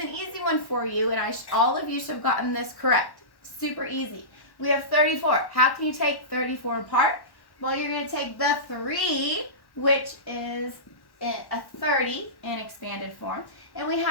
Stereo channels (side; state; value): right; late; 1.1 ms